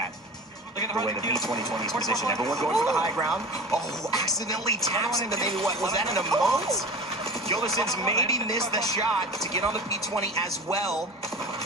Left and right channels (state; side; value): normal; both; correlation 0.35